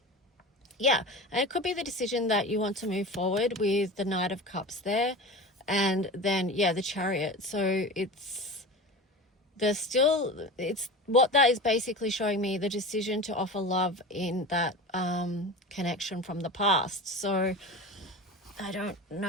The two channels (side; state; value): both; normal; correlation 0.31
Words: yeah, and it could be the decision that you want to move forward with the Knight of Cups there, and then, yeah, the Chariot. So it's there's still, it's what that is basically showing me, the decision to offer love in that connection from the past. So I don't